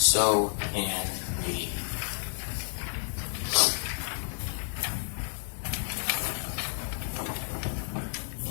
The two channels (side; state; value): right; silent; digital silence